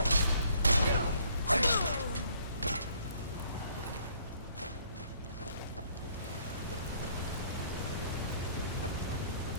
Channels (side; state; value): both; inverted; correlation -0.62